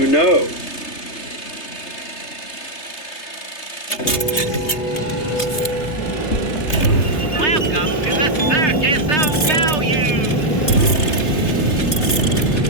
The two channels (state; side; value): late; right; 3.3 ms